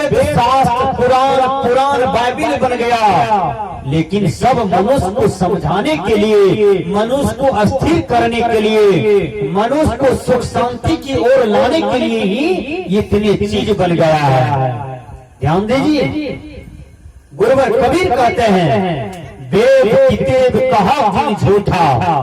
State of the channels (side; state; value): both; identical; correlation 1.00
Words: शास्त्र पुराण बाइबिल बन गया। लेकिन सब मनुष्य को समझाने के लिए, मनुष्य को अस्थिर करने के लिए, मनुष्य को सुख शांति की ओर लाने के लिए ही इतनी चीज बन गया है। ध्यान दीजिए, गुरुवर कबीर कहते हैं वेद कितेब कहा भी झूठा,